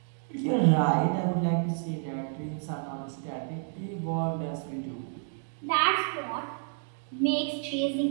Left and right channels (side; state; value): left; silent; 58 dB below the other